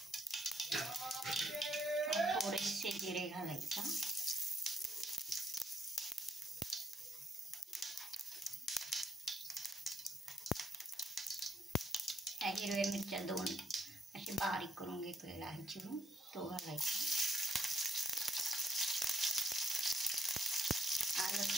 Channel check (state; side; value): normal; both; correlation 0.74